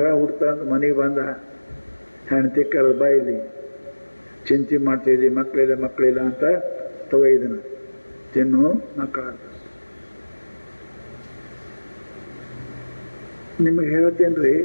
ಹುಡ್ತಾ ಅಂತ ಮನೆಗೆ ಬಂದ. ಹೆಂಡತಿ ಕರೆದ, ಬಾ ಇಲ್ಲಿ ಚಿಂತೆ ಮಾಡ್ತಿದ್ದಿ, ಮಕ್ಕಳಿಲ್ಲ ಅಂತ ತಗೊಯ್ದನ, ತಿನ್ನು ಮಕ್ಕಳ. ನಿಮಗೆ ಹೇಳ್ತೇನ್ರಿ,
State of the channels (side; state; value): both; inverted; correlation -1.00